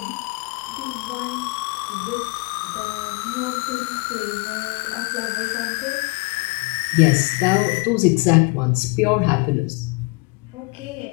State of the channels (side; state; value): right; quieter; 27.8 dB